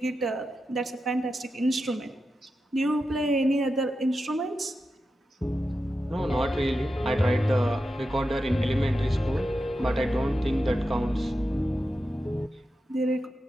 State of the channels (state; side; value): normal; both; correlation 0.90